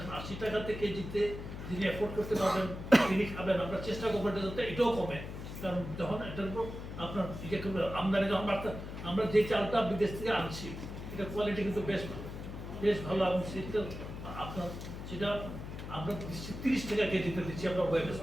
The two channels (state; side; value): noise; left; hum, 9 dB below the sound